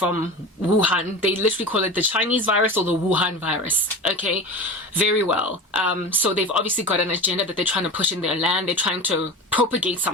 Wuhan. They literally call it the Chinese virus or the Wuhan virus. Okay, very well. So they've obviously got an agenda that they're trying to push in their land. They're trying to propagate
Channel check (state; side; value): normal; both; correlation 0.30